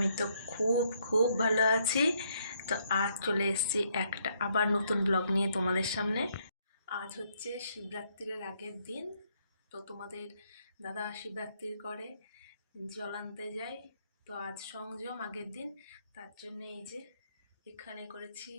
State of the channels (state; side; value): inverted; both; correlation -0.72